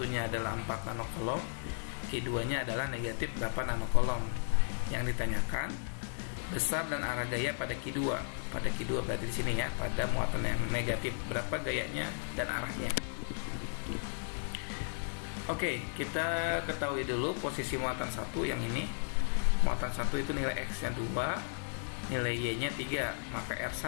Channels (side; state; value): right; silent; digital silence